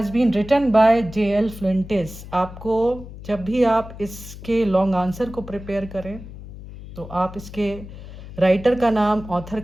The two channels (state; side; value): noise; left; hum, 14 dB below the sound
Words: been written by J.L. Fuentes. आपको जब भी आप इसके लॉन्ग आंसर को प्रिपेयर करें तो आप इसके राइटर का नाम, ऑथर